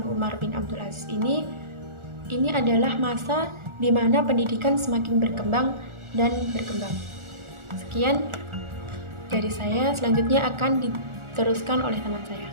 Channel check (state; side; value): late; left; 1.4 ms